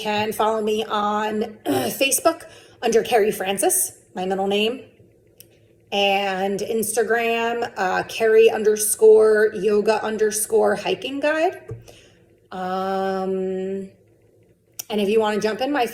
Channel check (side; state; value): both; identical; correlation 1.00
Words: follow me on Facebook under Carrie Francis, my middle name, and Instagram, Carrie_yoga_hiking guide. And if you want to jump in my